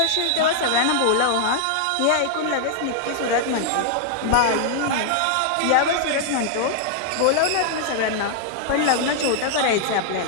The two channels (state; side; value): different; both; correlation -0.01